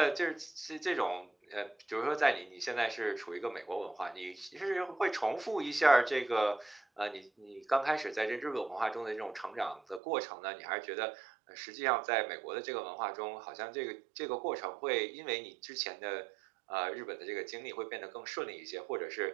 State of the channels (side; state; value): left; drops out; at 10.0 s